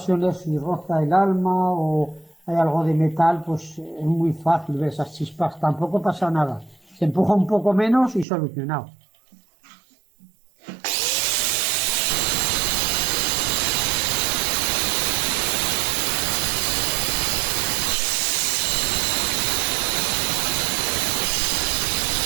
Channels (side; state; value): left; drops out; at 8.2 s